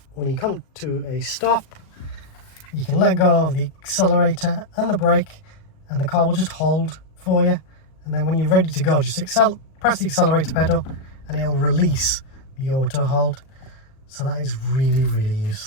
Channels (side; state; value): right; late; 37 ms